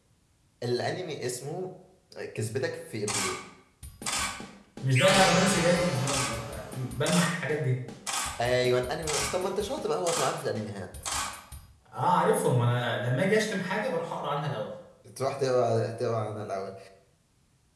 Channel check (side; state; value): both; identical; correlation 1.00